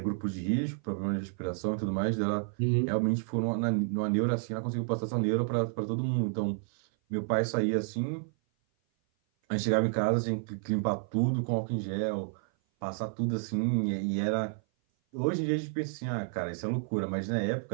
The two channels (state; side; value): silent; left; 56 dB below the other